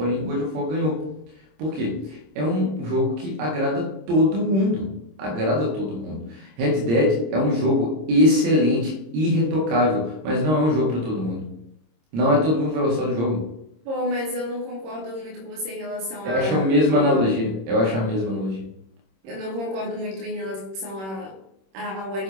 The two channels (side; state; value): left; late; 26 ms